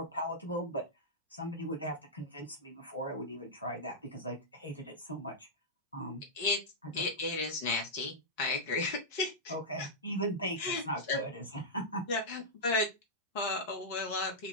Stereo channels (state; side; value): normal; both; correlation -0.09